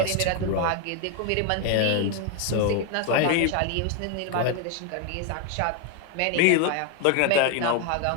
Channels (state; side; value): different; both; correlation 0.01